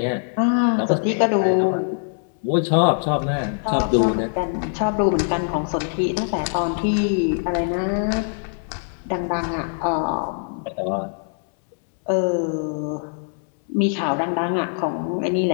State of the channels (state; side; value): silent; right; digital silence